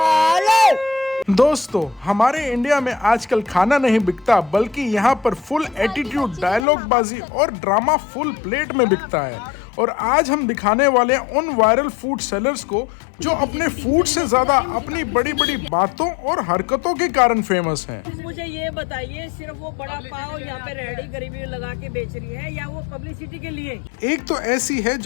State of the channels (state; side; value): drops out; right; at 6.7 s